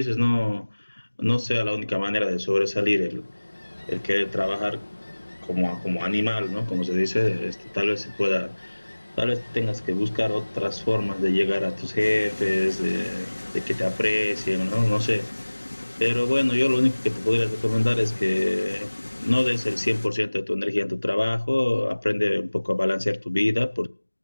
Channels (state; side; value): inverted; both; correlation -1.00